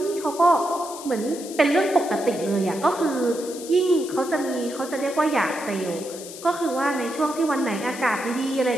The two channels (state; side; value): noise; left; hiss, 13 dB below the sound